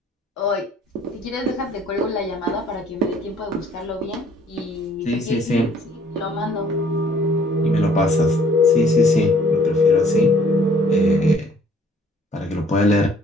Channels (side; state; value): both; normal; correlation 0.59